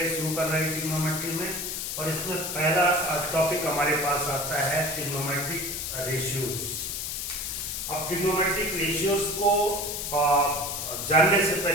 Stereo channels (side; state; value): left; noise; hiss, 4 dB below the sound